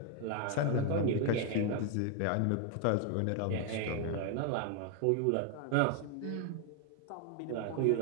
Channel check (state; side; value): different; both; correlation 0.01